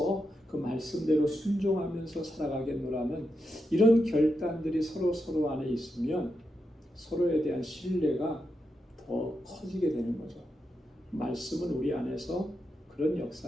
그 말씀대로 순종하면서 살아가겠노라는 이런 결단들이 서로 안에 있으면 서로에 대한 신뢰가 더 커지게 되는 거죠. 말씀은 우리 안에서 그런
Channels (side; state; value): both; normal; correlation 0.86